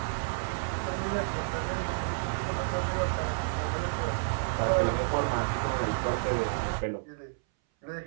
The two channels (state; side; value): silent; left; 58 dB below the other